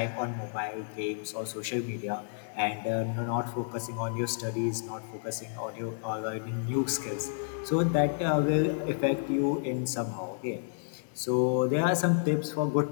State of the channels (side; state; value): right; silent; digital silence